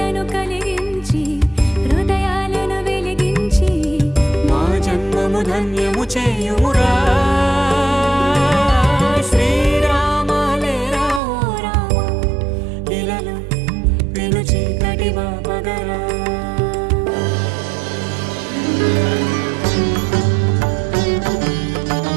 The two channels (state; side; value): drops out; left; at 11.2 s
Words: కలిగించి హృదయాలను వెలిగించి మా జన్మము ధన్యము చేయుమురా శ్రీరామ లేరా ఓ రామ ఇలను పిలుచి కటివా పగరా